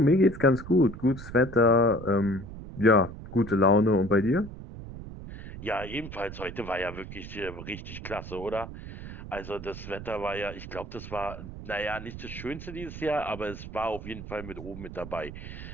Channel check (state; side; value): noise; right; rumble, 11 dB below the sound